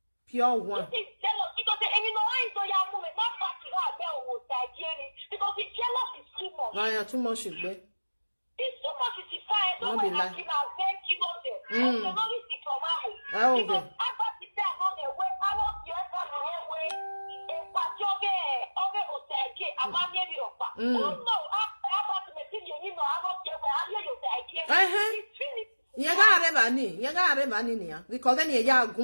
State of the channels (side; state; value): both; inverted; correlation -1.00